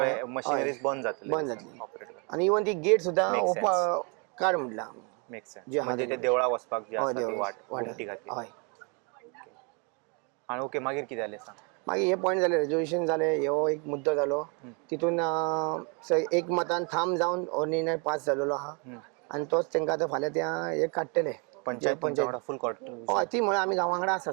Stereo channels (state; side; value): quieter; left; 34.7 dB